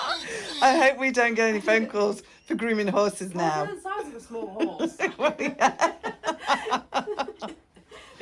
I hope we don't get any phone calls for grooming horses Well, now. they're the size of a small horse.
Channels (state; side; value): identical; both; correlation 1.00